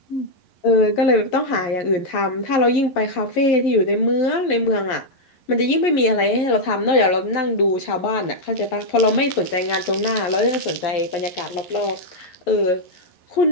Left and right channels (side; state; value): right; late; 11 ms